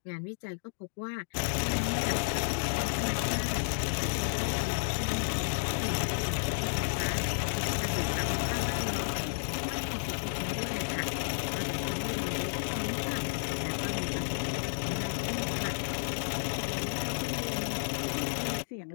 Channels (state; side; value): silent; right; digital silence